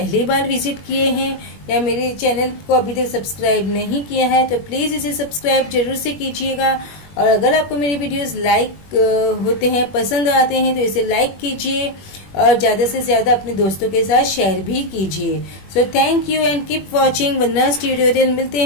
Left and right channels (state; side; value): late; right; 21 ms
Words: बार visit किए हैं या मेरे चैनल को अभी तक सब्सक्राइब नहीं किया है तो प्लीज़ इसे सब्सक्राइब जरूर से कीजिएगा. और अगर आपको मेरी वीडियोस लाइक होते हैं, पसंद आते हैं, तो इसे लाइक कीजिए और ज़्यादा से ज़्यादा अपने दोस्तों के साथ शेयर भी कीजिए. So thank you and keep watching Vandana's tutorial. मिलते